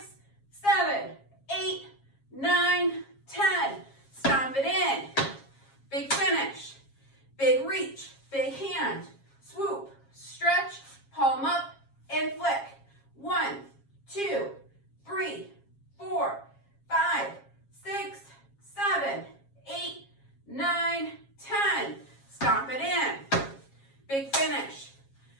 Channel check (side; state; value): right; late; 7.3 ms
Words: 7, 8, 9, 10. Stomp it in. Big finish. Big reach. Big hand. Swoop. Stretch. Palm up and flick. 1, 2, 3, 4, 5, 6, 7, 8, 9, 10. Stomp it in. Big finish.